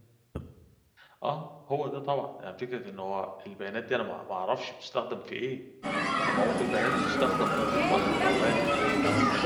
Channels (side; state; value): both; identical; correlation 1.00